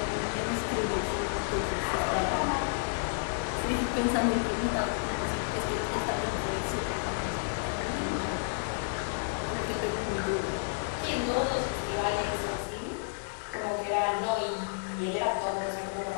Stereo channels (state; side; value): silent; right; 57 dB below the other